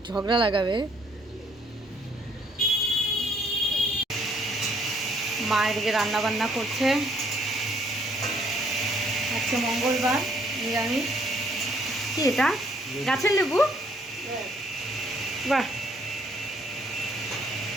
ঝগড়া লাগাবে। মা এদিকে রান্না বান্না করছে। আজকে মঙ্গলবার, নিরামিষ। কি এটা? গাছের লেবু? বাহ।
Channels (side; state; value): both; normal; correlation 0.66